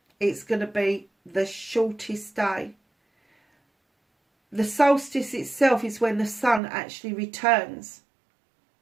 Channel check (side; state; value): left; drops out; at 6.6 s